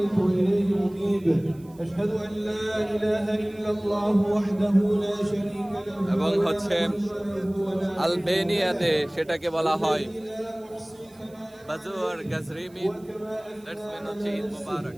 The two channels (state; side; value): noise; right; hiss, 28 dB below the sound